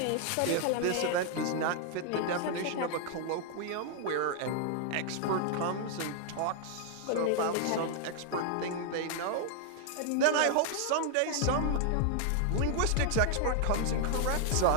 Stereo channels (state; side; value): different; both; correlation 0.00